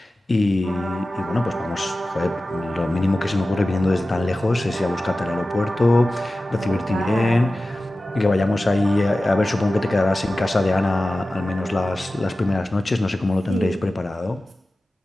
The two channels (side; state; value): both; normal; correlation 0.95